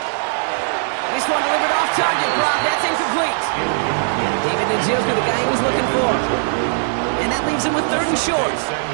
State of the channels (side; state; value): left; silent; 66 dB below the other